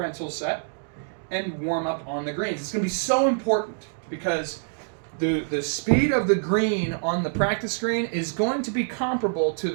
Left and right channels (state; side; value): silent; left; digital silence